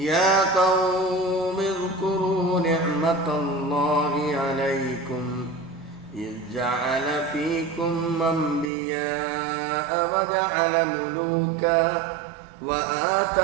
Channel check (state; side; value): drops out; left; at 8.7 s